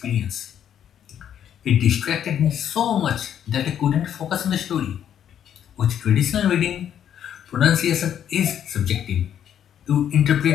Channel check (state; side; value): quieter; right; 9.7 dB